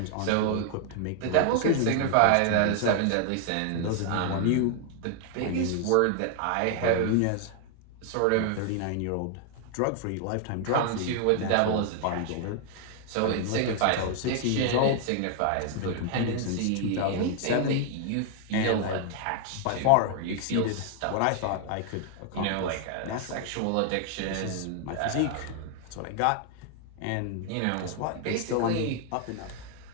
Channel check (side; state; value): both; different; correlation 0.00